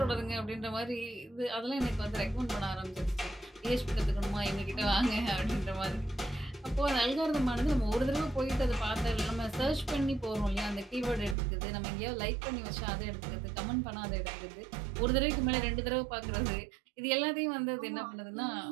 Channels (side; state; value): left; drops out; at 11.4 s